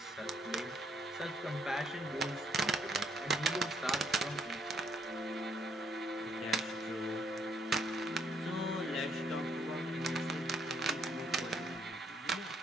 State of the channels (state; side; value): normal; both; correlation 0.69